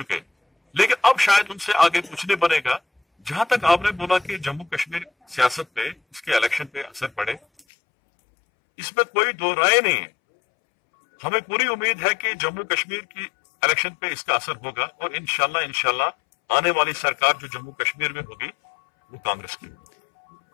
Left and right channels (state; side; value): drops out; right; at 7.6 s